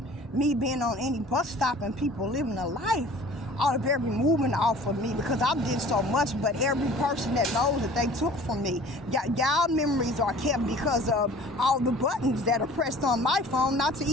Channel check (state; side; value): normal; both; correlation 0.47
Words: me being on any bus stop and people living a life out of every movement off of me, because I did so much, but every person that knows that they took from me, y'all memories are kept because of all the buttons that are pressed on my phone not to